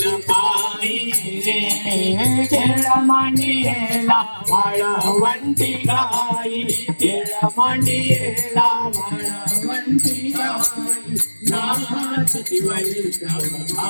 पायी रे. खेळ मांडियेला वाळवंटी गाई, खेळ मांडियेला वाळवंटी गाई, नाचती वैष्णव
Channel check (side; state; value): both; inverted; correlation -1.00